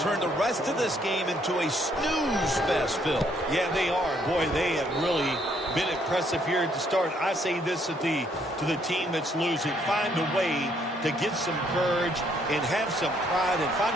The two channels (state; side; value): normal; both; correlation 0.68